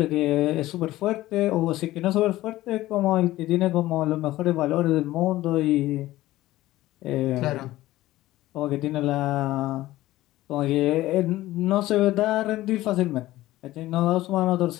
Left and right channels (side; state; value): right; quieter; 16.3 dB